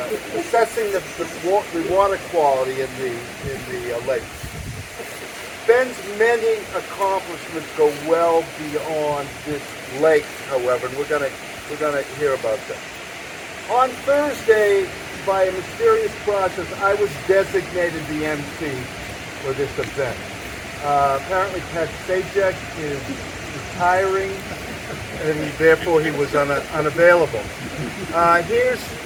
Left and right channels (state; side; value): identical; both; correlation 1.00